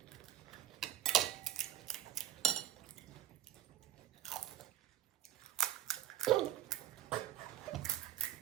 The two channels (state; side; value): quieter; left; 12.0 dB